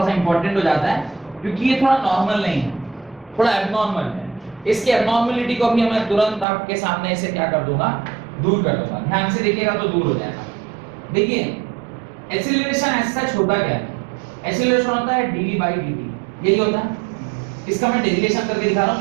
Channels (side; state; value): left; drops out; at 6.5 s